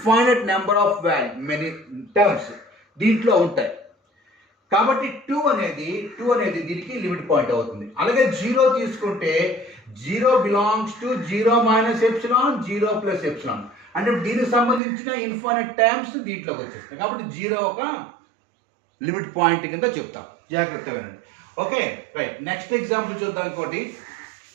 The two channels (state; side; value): drops out; left; at 14.8 s